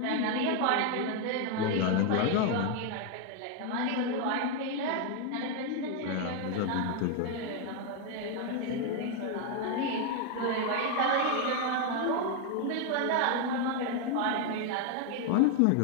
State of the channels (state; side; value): different; both; correlation 0.01